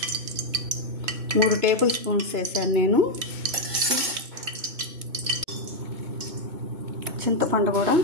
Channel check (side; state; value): left; late; 2.2 ms